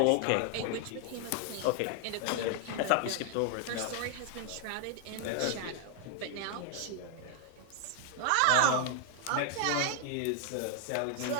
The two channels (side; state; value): both; different; correlation 0.00